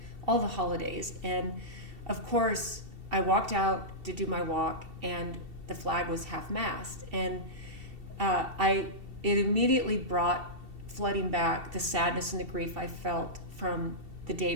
all the holidays. And of course I walked out to do my walk and the flag was half-mast, and it immediately brought flooding back the sadness and the grief I felt from the day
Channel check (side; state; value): left; late; 2.7 ms